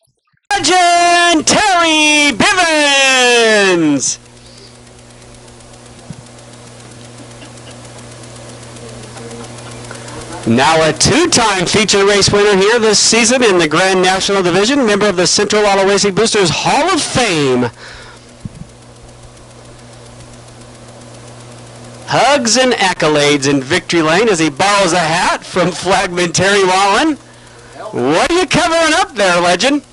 Legend Terry Bivens. Now a 2-time feature race winner here this season in the Grand National Division, member of the Central Auto Racing Boosters Hall of Fame. Hugs and accolades in victory lane as he borrows a hat from Flagman Terry Wallen. What are you covering up there, legend?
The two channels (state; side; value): identical; both; correlation 1.00